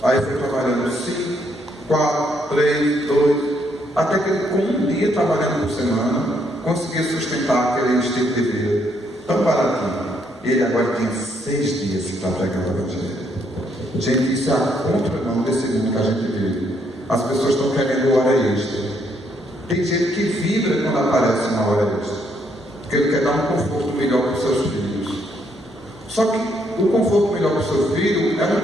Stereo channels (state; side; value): normal; both; correlation 0.72